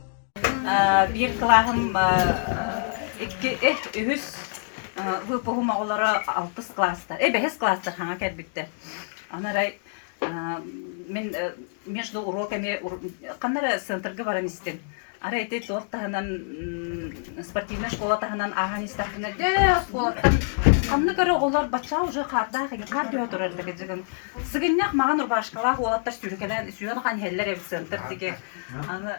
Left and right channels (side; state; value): right; silent; digital silence